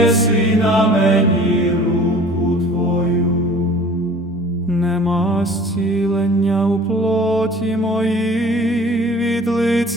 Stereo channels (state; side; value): normal; both; correlation 0.47